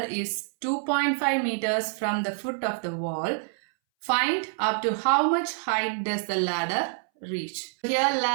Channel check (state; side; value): silent; left; 60 dB below the other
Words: is 2.5 meters from the foot of the wall, find up to how much height does the ladder reach. Here